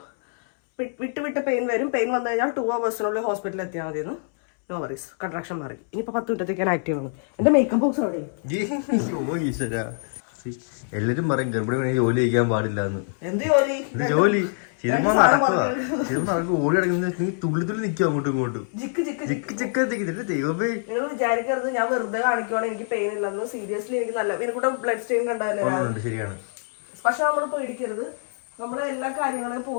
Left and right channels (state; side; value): silent; right; 62 dB below the other